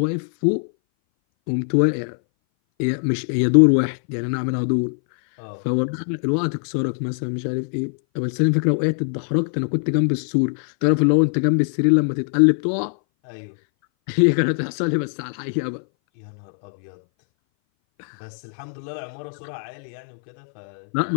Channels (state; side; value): silent; right; 60 dB below the other